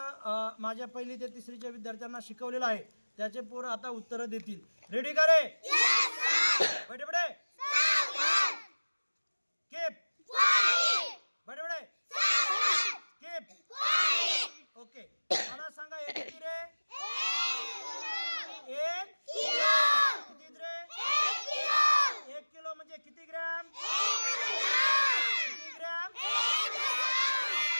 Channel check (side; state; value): both; inverted; correlation -1.00